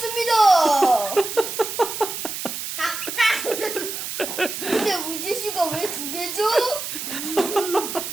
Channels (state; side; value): noise; right; hiss, 6 dB below the sound